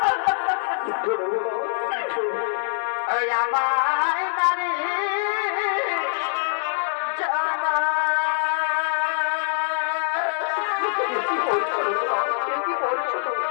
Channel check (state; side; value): silent; right; digital silence